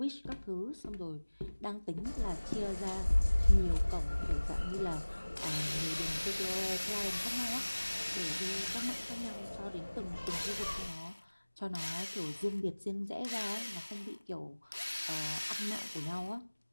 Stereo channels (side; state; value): both; inverted; correlation -1.00